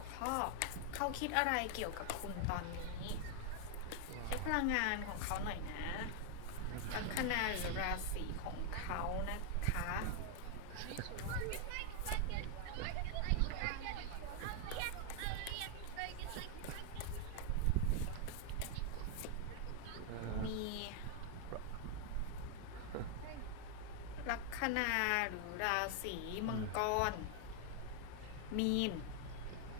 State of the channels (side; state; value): both; different; correlation 0.00